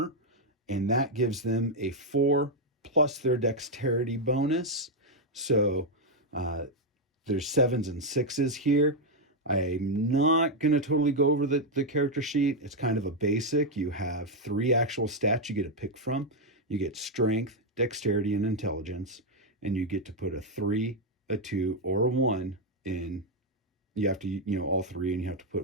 and that gives them a 4 plus their dexterity bonus. So there's 7s and 6s here. I'm not going to totally go over the character sheet. It's kind of a basic. You have 3 actual stats you get to pick from. You get strength, dexterity, and intelligence, and you get to put a 3, a 2, or a 1 in. You have to, all 3, and you have to put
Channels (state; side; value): normal; both; correlation 0.01